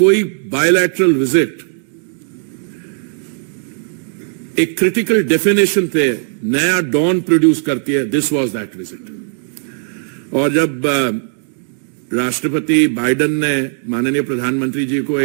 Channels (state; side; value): silent; left; digital silence